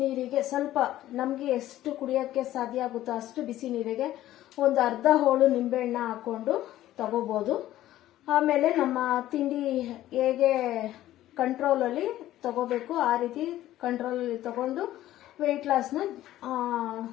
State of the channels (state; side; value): quieter; right; 14.1 dB